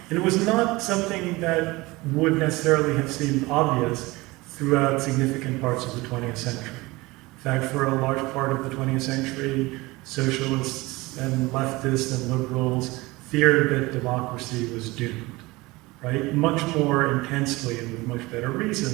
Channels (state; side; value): quieter; left; 21.7 dB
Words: And it was not something that would necessarily have seemed obvious throughout significant parts of the 20th century. In fact, for a large part of the 20th century, socialists and leftists and liberals feared that democracy was doomed, right? Much more intensely and with much better